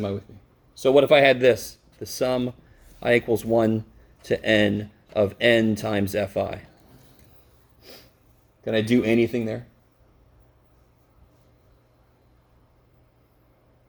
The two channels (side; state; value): both; identical; correlation 1.00